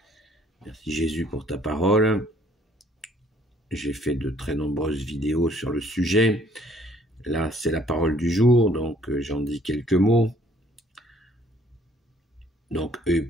Merci Jésus pour ta parole. J'ai fait de très nombreuses vidéos sur le sujet. Là, c'est la parole du jour, donc j'en dis quelques mots. Donc, œil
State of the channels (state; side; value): normal; both; correlation 0.61